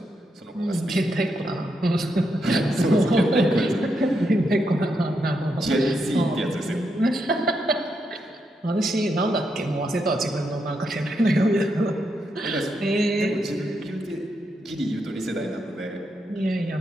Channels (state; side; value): normal; both; correlation 0.82